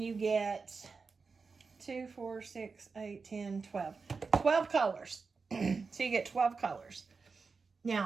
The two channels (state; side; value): quieter; left; 4.7 dB